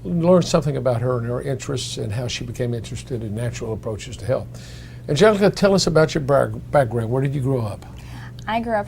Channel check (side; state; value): both; identical; correlation 1.00